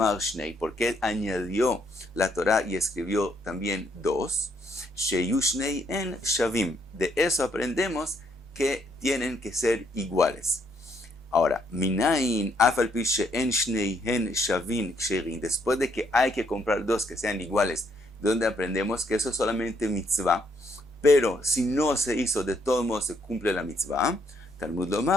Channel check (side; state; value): both; normal; correlation 0.72